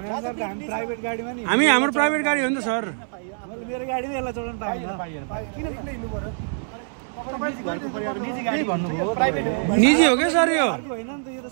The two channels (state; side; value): silent; left; 62 dB below the other